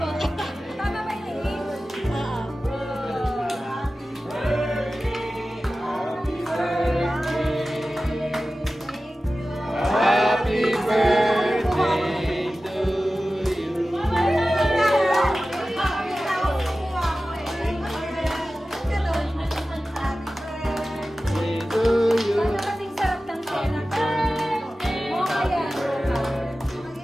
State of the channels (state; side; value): normal; both; correlation 0.95